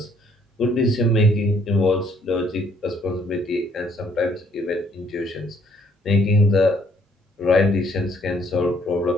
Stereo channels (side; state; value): both; normal; correlation 0.65